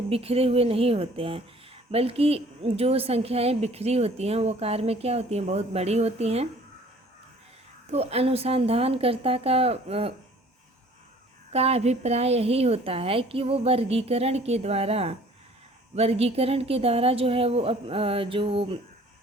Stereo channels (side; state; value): both; normal; correlation 0.53